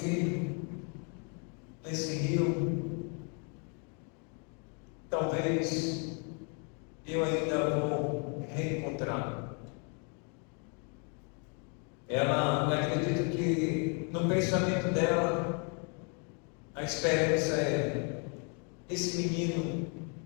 nesse rio, talvez eu ainda vou reencontrá-lo. Ela, eu acredito que no pensamento dela, a esperança é: esse menino,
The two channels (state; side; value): quieter; right; 37.9 dB